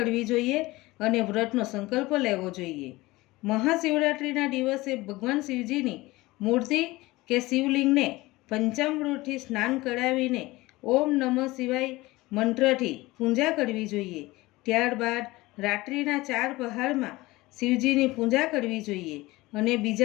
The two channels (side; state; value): right; quieter; 20.2 dB